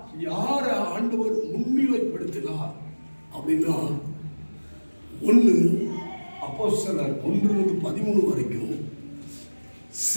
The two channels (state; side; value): inverted; both; correlation -1.00